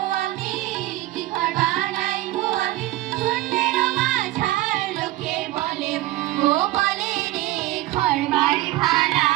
আমি, কি ঘর বানাইবো আমি, শূন্যের মাঝার লোকে বলে ও বলে রে ঘর বাড়ি ভালা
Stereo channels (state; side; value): quieter; left; 17.1 dB